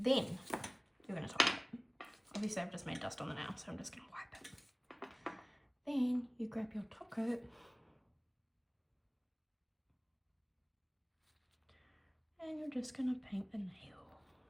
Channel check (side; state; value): both; identical; correlation 1.00